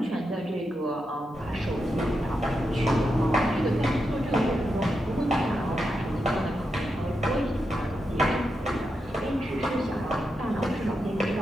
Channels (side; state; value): both; normal; correlation 0.86